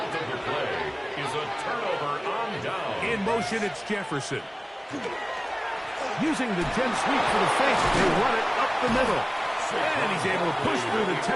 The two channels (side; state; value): both; identical; correlation 1.00